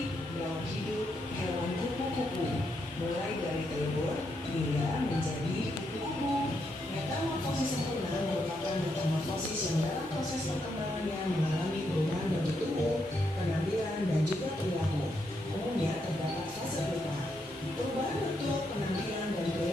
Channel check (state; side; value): normal; both; correlation 0.80